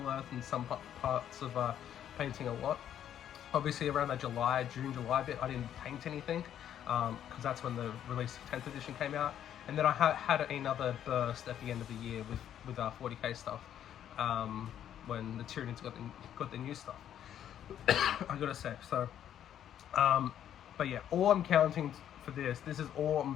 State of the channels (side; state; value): right; quieter; 10.2 dB